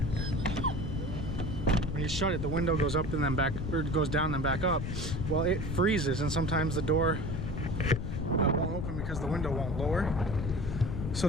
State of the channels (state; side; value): noise; left; rumble, 4 dB below the sound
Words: when you shut it, the window goes up and then back, or it goes down and then back up. Well, it freezes and sometimes the door won't open because the window won't lower.